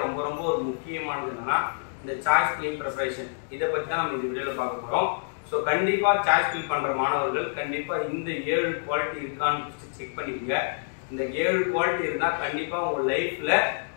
ரொம்ப ஒரு முக்கியமானது என்னன்னா இந்த சாய்ஸ் ஃபில்லிங் ப்ரிப்பரேஷன். இதை பற்றி தான் நம்ம இந்த வீடியோவில் பார்க்க போகிறோம். ஸோ கண்டிப்பாக சாய்ஸ் ஃபில் பண்ணுற மாணவர்கள் கண்டிப்பாக இந்த 7 குவாலிட்டி இருக்கான்னு செக் பண்ணிக்கோங்க. இந்த 7 குவாலிட்டி இருந்தால் கண்டிப்பாக உங்கள் லைஃப்பில்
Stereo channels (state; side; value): silent; right; digital silence